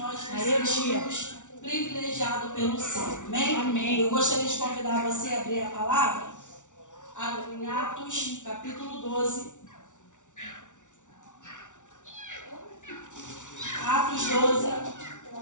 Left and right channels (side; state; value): right; late; 0.86 ms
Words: nos sentimos privilegiados pelo céu. Amém? Amém? Eu gostaria de convidar você a abrir a palavra em Atos, capítulo 12. Atos 12.